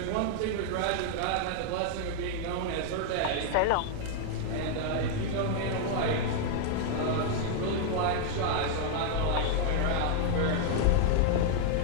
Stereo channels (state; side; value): different; both; correlation 0.00